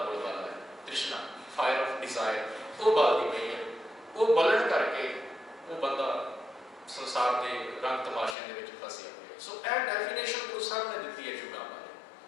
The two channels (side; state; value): right; drops out; at 8.3 s